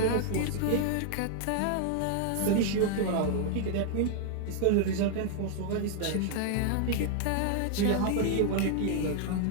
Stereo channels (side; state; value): both; different; correlation 0.00